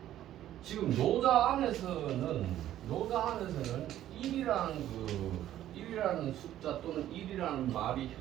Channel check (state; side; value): quieter; left; 12.5 dB